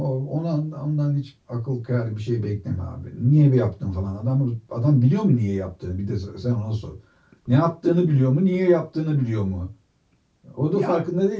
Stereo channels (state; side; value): identical; both; correlation 1.00